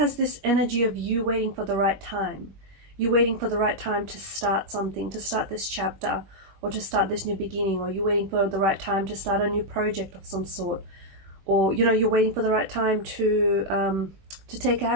this energy of you waiting for the right time. You're waiting for the right time to start something, to start this chapter, or to start this new beginning, or you're waiting for the right time to start a new project of some sort, or you know, you're waiting for the right time to take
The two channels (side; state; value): left; late; 21 ms